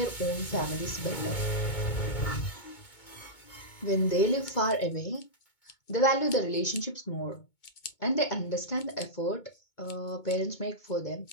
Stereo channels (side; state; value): right; late; 2.2 ms